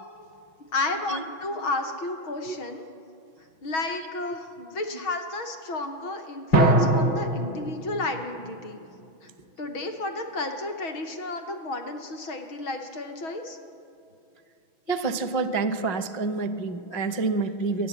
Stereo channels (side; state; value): right; late; 6.1 ms